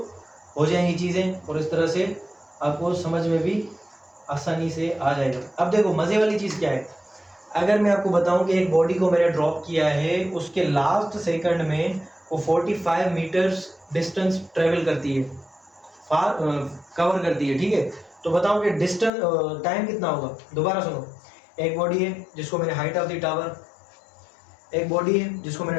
हो जाएंगी चीज़ें, और इस तरह से आपको समझ में भी आसानी से आ जाएगा। अब देखो मज़े वाली चीज़ क्या है, अगर मैं आपको बताऊं कि एक बॉडी को मैंने ड्रॉप किया है, उसके लास्ट सेकंड में वो 45 मीटर्स डिस्टेंस ट्रेवल करती है, कवर करती है। ठीक है, तो बताओ कि डिस्टेंस टाइम कितना होगा। दोबारा सुनो, एक बॉडी है जिसको मैंने हाइट ऑफ द टावर, एक बॉडी है जिसको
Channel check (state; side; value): drops out; right; at 19.1 s